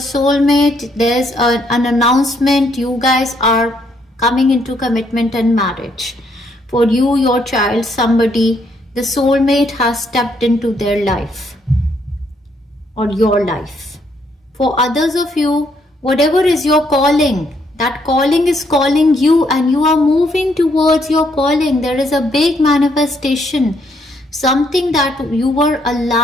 There's an announcement. You guys are coming into commitment and marriage. For you, your child, somebody, the soulmate has stepped into their life or your life. For others of you, whatever is your calling, that calling is calling you and you are moving towards your calling. There is a big manifestation, something that you were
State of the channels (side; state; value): both; normal; correlation 0.72